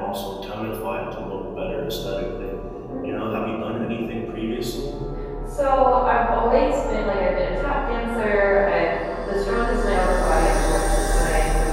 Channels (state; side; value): identical; both; correlation 1.00